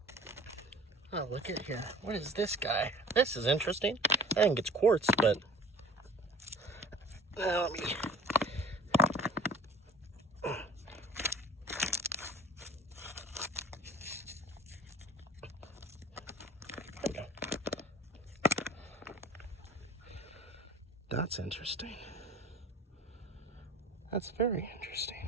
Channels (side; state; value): both; normal; correlation 0.44